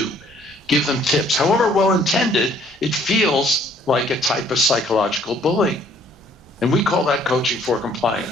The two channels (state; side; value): normal; both; correlation 0.61